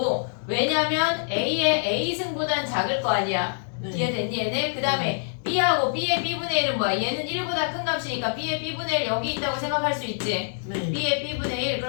왜냐면 A의 A승보단 작을 거 아니야. 네. 이해됐니 얘네? 그 다음에 B하고 B의 B분의 1은 뭐야? 얘는 1보다 큰 값이니까 B의 B분의 1 여기 있다고 생각할 수 있지. 네. B의 B분의 1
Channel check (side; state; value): right; silent; digital silence